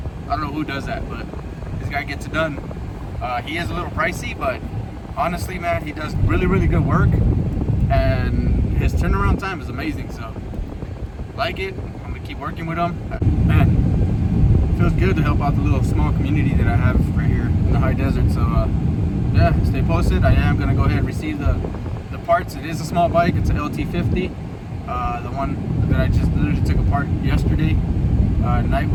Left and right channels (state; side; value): identical; both; correlation 1.00